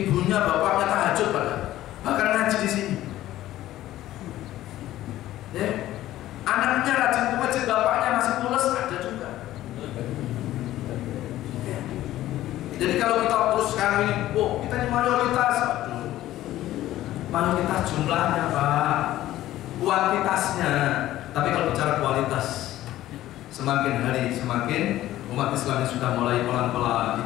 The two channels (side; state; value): right; quieter; 14.5 dB